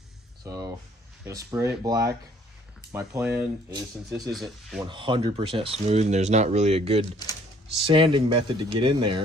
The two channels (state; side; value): normal; both; correlation 0.60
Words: So gonna spray it black. My plan is, since this isn't 100% smooth and there's not really a good sanding method to get in